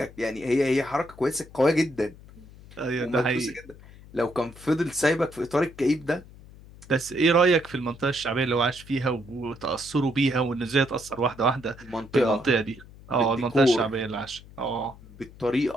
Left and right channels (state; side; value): noise; left; hum, 20 dB below the sound